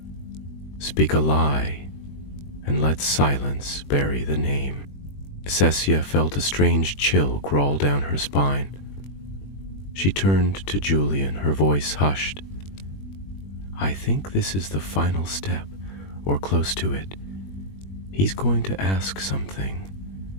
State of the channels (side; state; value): right; late; 21 ms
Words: Speak a lie, and let silence bury the name. Cassia felt a strange chill crawl down her spine. She turned to Julian, her voice hushed. I think this is the final step, or close to it. He's going to ask something